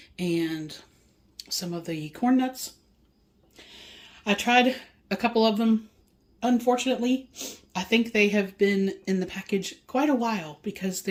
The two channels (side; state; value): both; identical; correlation 1.00